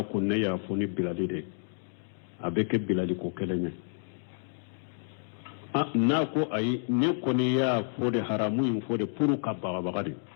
ko ne ya foni bilali de abeke bilali ko kelene na ko ayi ne ko ne ya fo de haramu in fo de puru ka bagade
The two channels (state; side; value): silent; right; digital silence